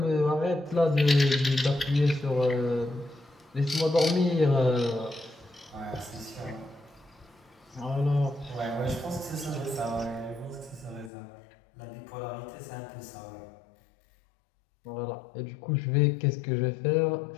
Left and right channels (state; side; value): drops out; right; at 11.1 s